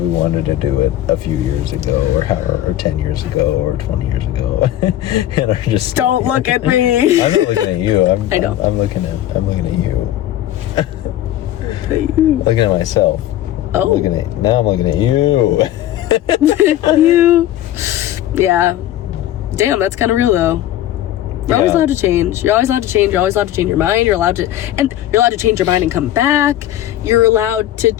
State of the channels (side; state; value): right; quieter; 13.0 dB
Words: wanted to do it a few years ago, or 10 years ago, or 20 years ago, and are just don't look at me. I'm not looking at you. I know. I'm looking at you. Looking at myself. Oh. Now I'm looking at you. You. Yeah. Damn, that's kind of real though. You're always allowed to change. You're always allowed to change. You're always allowed to change your mind. You're allowed to change your mind and come back. You're allowed to